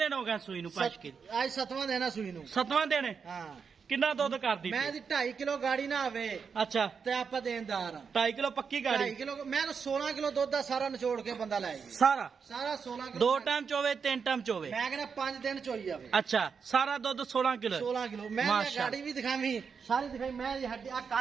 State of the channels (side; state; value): left; quieter; 6.0 dB